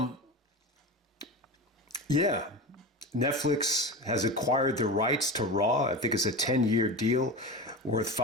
yeah, Netflix has acquired the rights to Raw. I think it's a 10-year deal worth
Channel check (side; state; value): both; normal; correlation 0.26